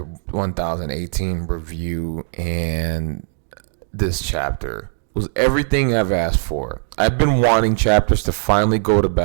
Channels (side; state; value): left; silent; 66 dB below the other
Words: 1018 review. And this chapter was everything I've asked for. I've been wanting chapters to finally go to